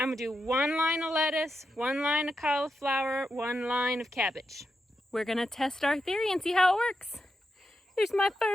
gonna do one line of lettuce, one line of cauliflower, one line of cabbage. We're gonna test our theory and see how it works. Here's my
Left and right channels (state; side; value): normal; both; correlation 0.86